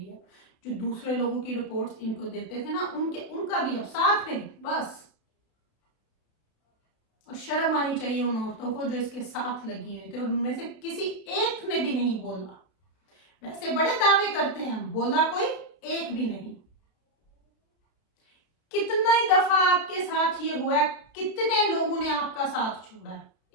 अब। जो दूसरे लोगों की रिपोर्ट्स इनको देते थे ना, उनका भी अब साथ में बस। और शर्म आनी चाहिए उन औरतों को जो इसके साथ लगी हुई थी, और उनमें से किसी एक ने भी नहीं बोला। वैसे बड़े दावे करते हैं, बोला कोई एक भी नहीं। कितना ही दफा आपके साथ ये हुआ है, कितने लोगों ने आपका साथ छोड़ा है?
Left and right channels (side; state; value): right; late; 32 ms